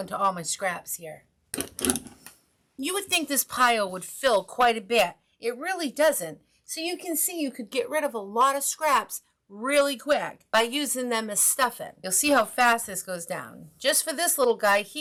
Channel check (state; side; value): identical; both; correlation 1.00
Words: to all my scraps here. You would think this pile would fill quite a bit. It really doesn't. So you can see you could get rid of a lot of scraps really quick by using them as stuffing. You'll see how fast this goes down. Just for this little guy